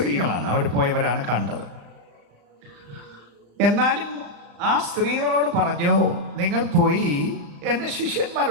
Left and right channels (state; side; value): late; left; 35 ms